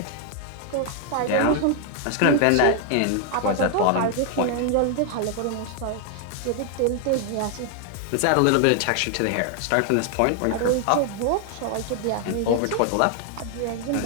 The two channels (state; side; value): different; both; correlation 0.00